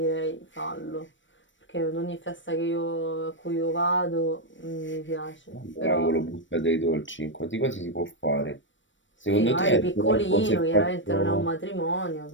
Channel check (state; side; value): late; right; 0.55 ms